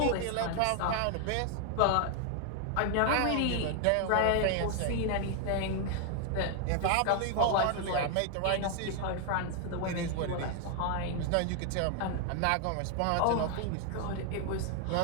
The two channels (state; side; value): different; both; correlation 0.00